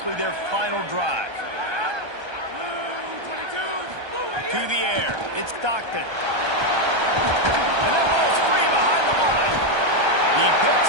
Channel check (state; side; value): late; left; 1.3 ms